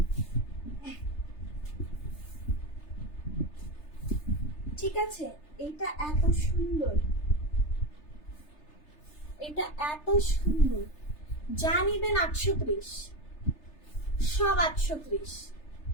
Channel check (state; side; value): late; right; 3.3 ms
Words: ঠিক আছে? এটা এত সুন্দর, এটা এত সুন্দর, যা নিবেন 830, সব 830।